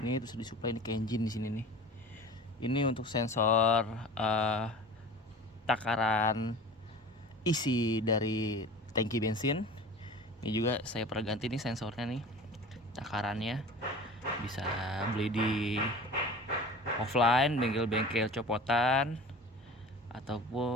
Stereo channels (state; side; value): normal; both; correlation 0.39